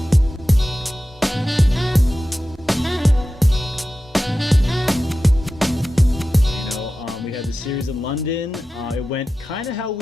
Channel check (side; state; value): both; normal; correlation 0.93